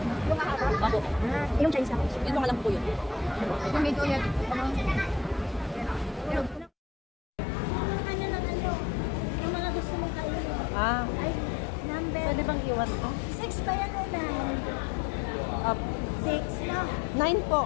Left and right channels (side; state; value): right; drops out; at 6.7 s